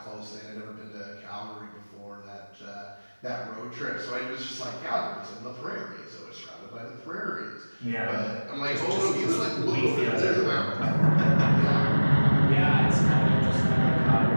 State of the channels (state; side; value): inverted; both; correlation -1.00